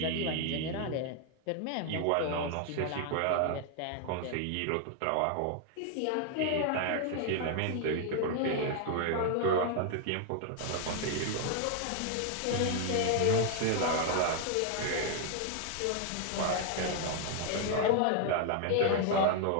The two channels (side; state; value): both; different; correlation 0.00